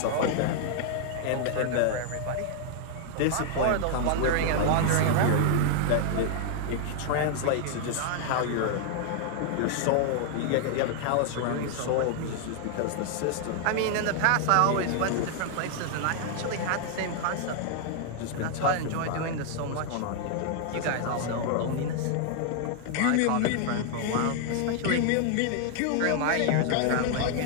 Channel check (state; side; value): different; both; correlation 0.00